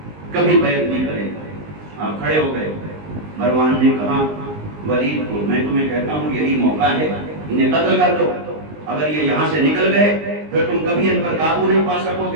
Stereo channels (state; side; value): late; left; 19 ms